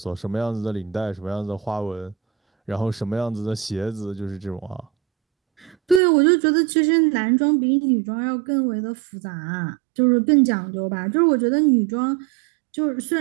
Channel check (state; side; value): drops out; left; at 6.0 s